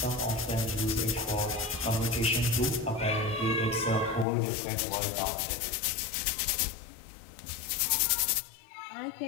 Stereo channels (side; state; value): right; drops out; at 4.2 s